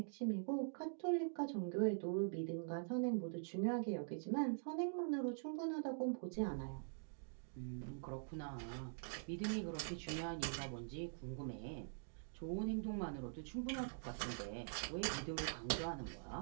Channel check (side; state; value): left; silent; digital silence